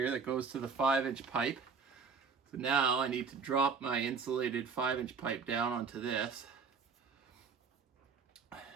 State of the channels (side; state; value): left; quieter; 5.4 dB